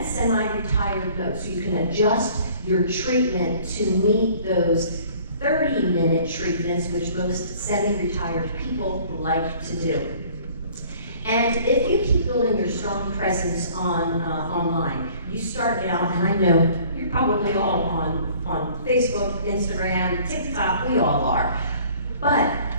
semi-retired mode. So you can adjust your treatment to meet those 30-minute treatments, which most semi-retired people like to do. And if you keep building your strong presence online, you start out, and I know you're probably all on Facebook, Instagram, TikTok, we all are. But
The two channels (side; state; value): both; inverted; correlation -0.53